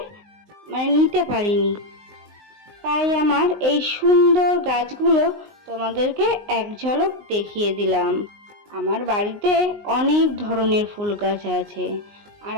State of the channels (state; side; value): late; left; 19 ms